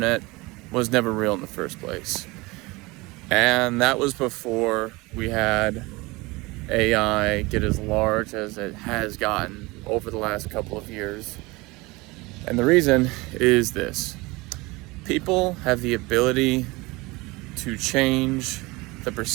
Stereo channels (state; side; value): quieter; left; 23.3 dB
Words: was never real in the first place. And that was before we had AI get as large as it has gotten over the last couple of years. And the reason is this: people have the ability to change the